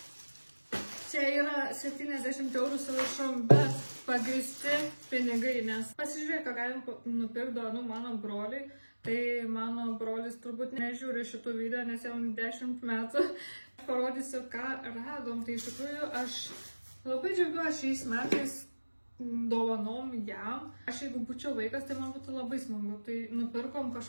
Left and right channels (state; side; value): inverted; both; correlation -1.00